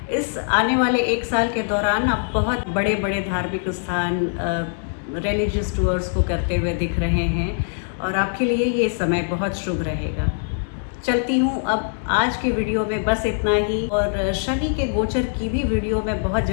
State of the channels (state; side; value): silent; right; digital silence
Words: इस आने वाले 1 साल के दौरान आप बहुत बड़े बड़े धार्मिक स्थान, रिलीजियस टूर्स को करते हुए दिख रहे हैं, और आपके लिए ये समय बहुत शुभ रहेगा। चलती हूँ अब आज के वीडियो में बस इतना ही, और शनि के गोचर की भी वीडियो मैं बहुत